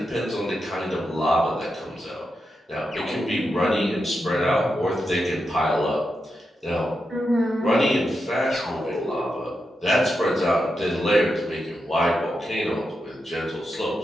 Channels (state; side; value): normal; both; correlation 0.87